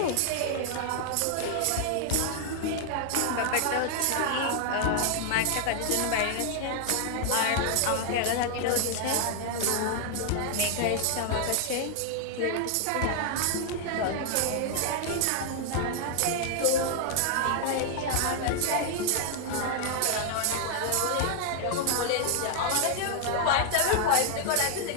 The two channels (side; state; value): both; different; correlation 0.00